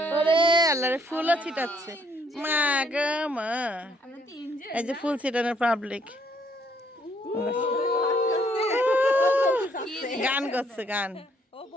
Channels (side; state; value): both; normal; correlation 0.68